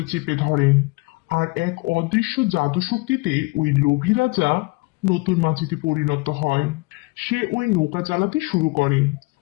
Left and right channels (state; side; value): quieter; right; 26.0 dB